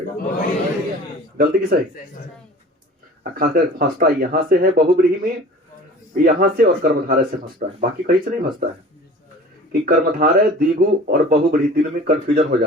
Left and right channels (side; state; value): both; normal; correlation 0.43